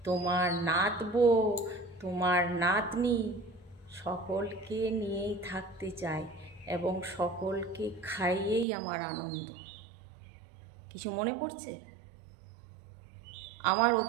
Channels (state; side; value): drops out; left; at 8.7 s